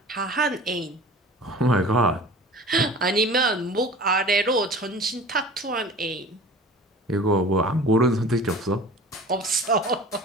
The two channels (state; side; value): normal; both; correlation 0.41